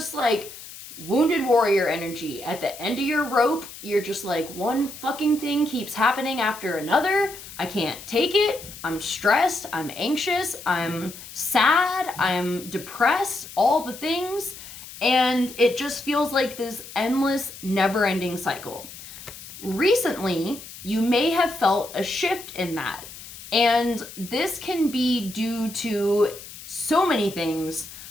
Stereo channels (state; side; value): noise; left; hiss, 15 dB below the sound